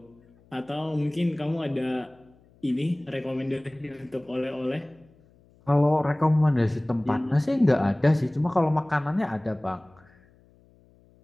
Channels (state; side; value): noise; left; hum, 30 dB below the sound